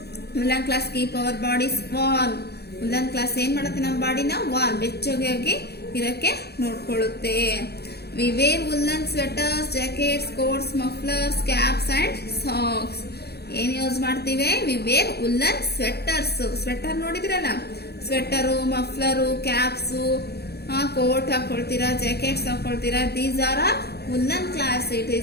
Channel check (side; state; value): right; late; 0.47 ms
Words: Woollen clothes keep our bodies warm. Woollen clothes ಏನ್ ಮಾಡುತ್ತೆ? ನಮ್ಮ ಬಾಡಿನ ವಾರ್ಮ್, ಬೆಚ್ಚಗಾಗಿ ಇರಕ್ಕೆ ನೋಡ್ಕೊಳ್ಳುತ್ತೆ. We wear woollen sweaters, jackets, coats, mufflers, caps and socks. ಏನ್ ಯೂಸ್ ಮಾಡ್ತೀವಿ? We wear woollen sweaters. Sweater ನೋಡಿದ್ರಲ್ಲ, ಸ್ವೆಟರು, ಮಫ್ಲರು, ಕ್ಯಾಪ್ಸು, ಕೋಟ್ ಹಾಕೊಳ್ತೀರಾ, ಜಾಕೆಟ್ಸ್ ಹಾಕೊಳ್ತೀರಾ. These are woollen clothes. It